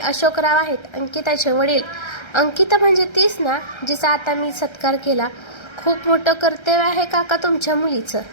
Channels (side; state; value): right; late; 1.3 ms